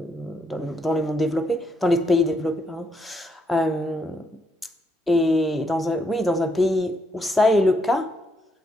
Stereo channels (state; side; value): normal; both; correlation 0.77